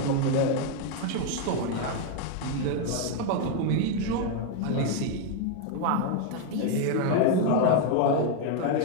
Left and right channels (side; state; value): both; different; correlation 0.01